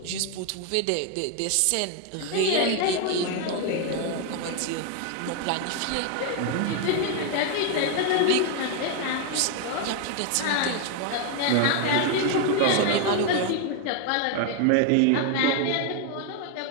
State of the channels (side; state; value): both; different; correlation 0.01